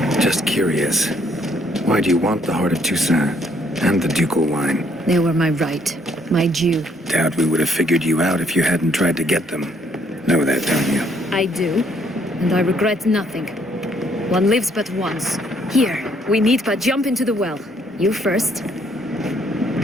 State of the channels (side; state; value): both; normal; correlation 0.67